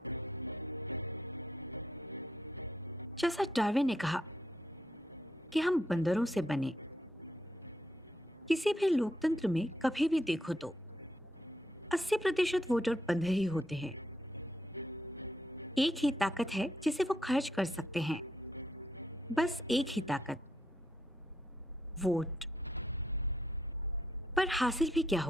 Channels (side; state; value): both; normal; correlation 0.77